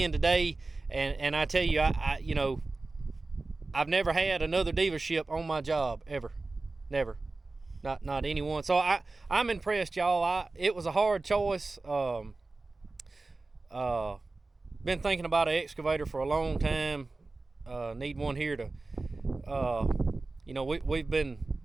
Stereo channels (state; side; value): quieter; left; 3.4 dB